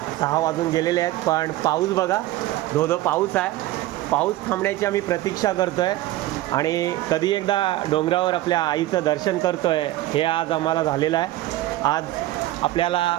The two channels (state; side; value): quieter; left; 15.8 dB